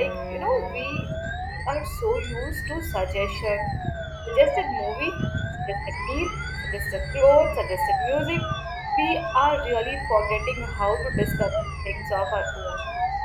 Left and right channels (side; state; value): both; identical; correlation 1.00